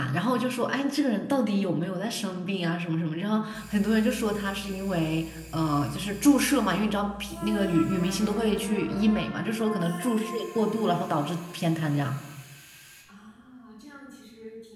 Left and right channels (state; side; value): identical; both; correlation 1.00